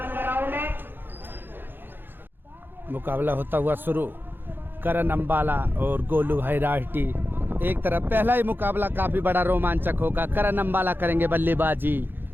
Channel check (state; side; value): late; left; 0.099 ms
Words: मुकाबला होता हुआ शुरू। करण अम्बाला और गोलू भाई राठी एक तरफ। पहला ही मुकाबला काफी बड़ा रोमांचक होगा। करण अम्बाला करेंगे बल्लेबाजी।